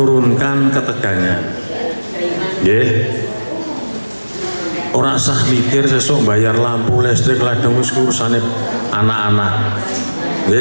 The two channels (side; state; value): both; inverted; correlation -1.00